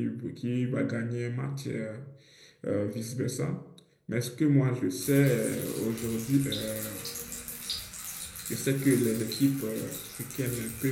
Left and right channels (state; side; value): identical; both; correlation 1.00